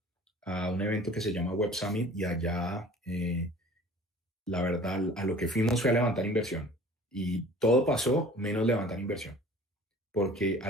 a un evento que se llama Web Summit y allá, la verdad, a lo que fuimos fue a levantar inversión. Y todo pasó menos levantar inversión. Porque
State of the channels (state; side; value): normal; both; correlation 0.47